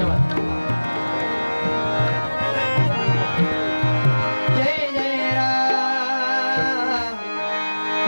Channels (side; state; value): both; inverted; correlation -1.00